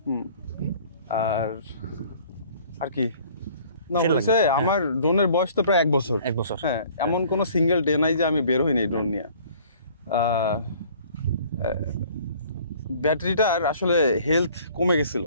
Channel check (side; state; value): both; inverted; correlation -0.54